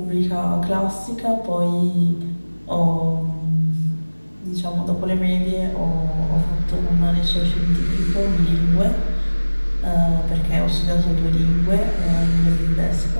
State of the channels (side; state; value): both; inverted; correlation -1.00